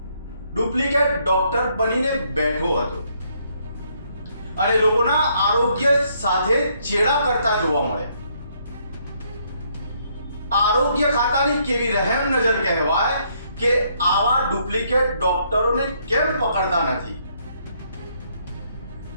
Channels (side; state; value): both; inverted; correlation -0.70